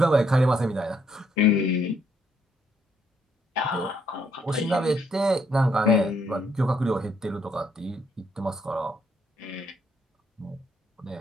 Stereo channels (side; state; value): both; normal; correlation 0.71